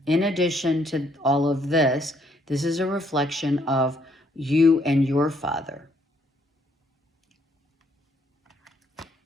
in addition to all of this, this is a reflection of you and your father.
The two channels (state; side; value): normal; both; correlation 0.69